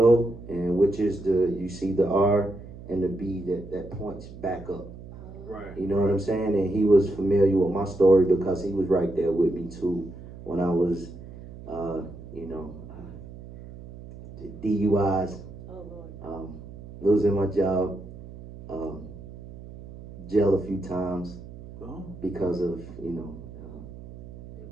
and which is you see the R and the B that points back up. Right. You know what I'm saying? And he was familiar with my story because he was right there with me too when I was, DUIs. Losing my job, jail a few times because of,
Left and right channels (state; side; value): noise; right; hum, 15 dB below the sound